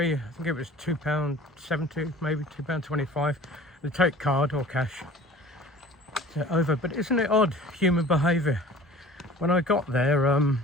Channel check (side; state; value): both; normal; correlation 0.45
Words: I think it was £2.70, maybe £2.25. They take card or cash over, but isn't it odd, human behaviour? When I got there,